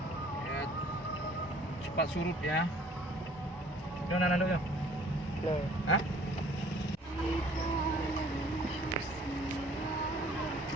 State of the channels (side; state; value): both; normal; correlation 0.55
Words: cepat surut ya. Udah nana dulu ya. Hah?